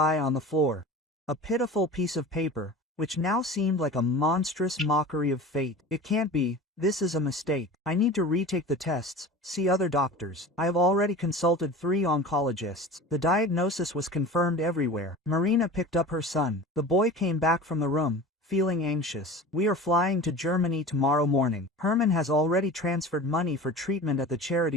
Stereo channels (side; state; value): both; normal; correlation 0.36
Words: on the floor. A pitiful piece of paper, which now seemed like a monstrous mockery of fate. It can't be, this is a mistake. I need to retake the tests, see other doctors. I have already consulted 3 oncologists. The diagnosis was confirmed everywhere. Marina picked up her son. The boy came back from the room, feeling anxious. We are flying to Germany tomorrow morning. Herman has already transferred money for treatment at the